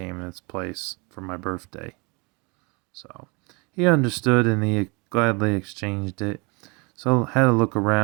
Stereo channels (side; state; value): left; quieter; 29.6 dB